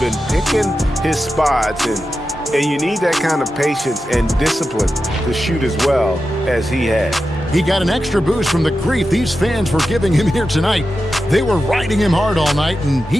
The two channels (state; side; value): normal; both; correlation 0.91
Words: picking his spots, and you need that kind of patience and discipline to shoot as well as he had. He got an extra boost from the grief these fans were giving him here tonight. They were riding him hard all night, and